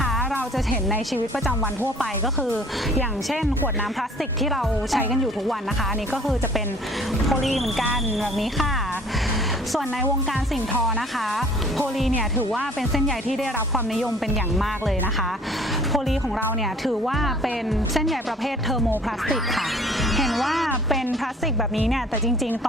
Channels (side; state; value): both; normal; correlation 0.53